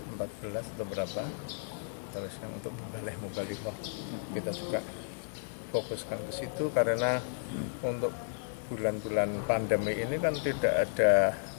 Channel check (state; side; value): silent; right; digital silence